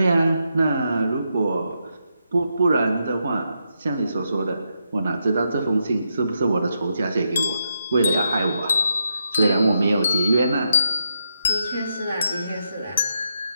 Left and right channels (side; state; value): both; inverted; correlation -0.82